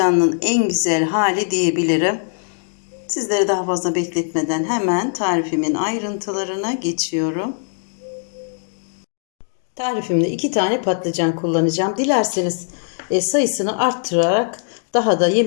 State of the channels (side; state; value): right; silent; digital silence